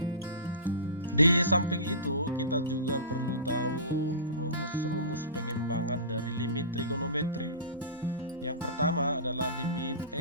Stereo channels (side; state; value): both; inverted; correlation -0.31